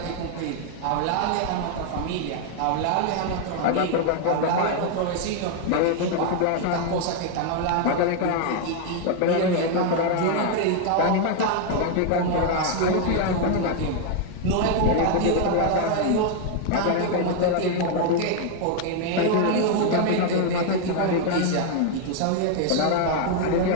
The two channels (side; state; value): both; different; correlation 0.00